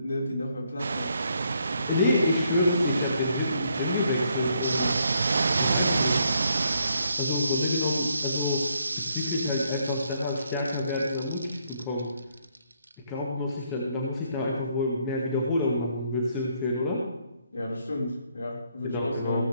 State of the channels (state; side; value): inverted; both; correlation -0.72